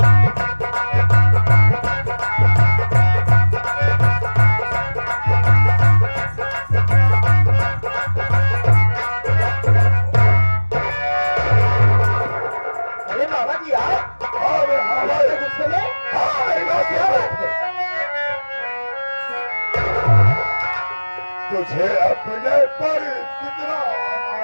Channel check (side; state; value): both; inverted; correlation -1.00